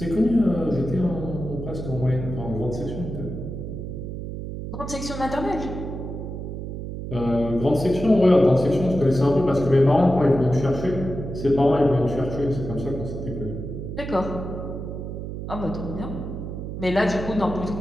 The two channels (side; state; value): right; noise; hum, 7 dB below the sound